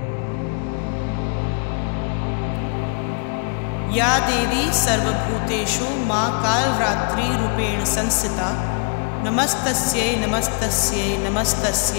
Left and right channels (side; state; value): right; quieter; 38.6 dB